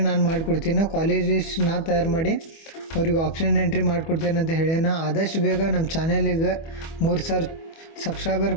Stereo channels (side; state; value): right; late; 25 ms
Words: ನಾನು ಮಾಡಿಕೊಡ್ತೀನಿ. ಕಾಲೇಜ್ ಲಿಸ್ಟ್ ನಾ ತಯಾರು ಮಾಡಿ ಅವ್ರಿಗೆ ಆಪ್ಷನ್ ಎಂಟ್ರಿ ಮಾಡಿಕೊಡ್ತೇನೆ ಅಂತ ಹೇಳ್ಯಾನ. ಆದಷ್ಟು ಬೇಗ ನಮ್ಮ ಚಾನಲಿಗೆ 3,000 ಸಬ್ಸ್ಕ್ರೈಬರ್